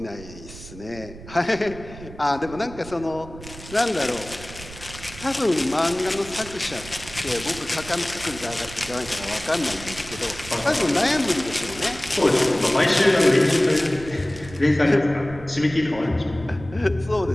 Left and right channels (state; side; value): noise; right; rumble, 16 dB below the sound